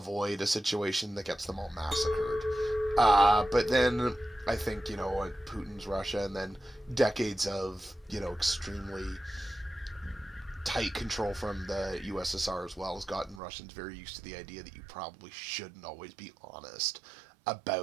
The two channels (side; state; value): left; drops out; at 13.4 s